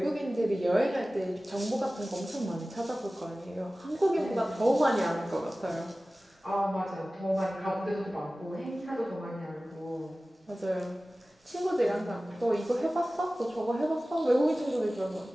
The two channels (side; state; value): both; normal; correlation 0.97